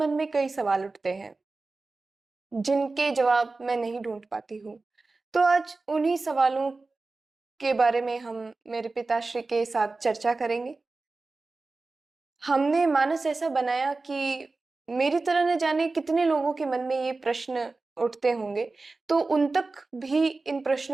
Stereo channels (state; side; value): quieter; left; 3.6 dB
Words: में कई सवाल उठते हैं जिनके जवाब मैं नहीं ढूंढ पाती हूँ। तो आज उन्हीं सवालों के बारे में हम मेरे पिताश्री के साथ चर्चा करेंगे। हमने मानस ऐसा बनाया कि मेरी तरह न जाने कितने लोगों के मन में ये प्रश्न उठते होंगे, तो उन तक भी इन